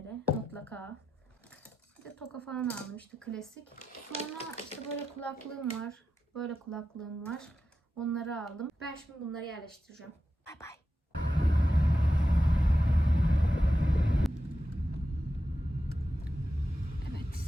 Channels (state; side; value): normal; both; correlation 0.90